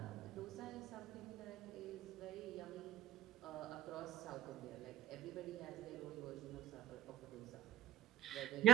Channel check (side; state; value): left; quieter; 12.8 dB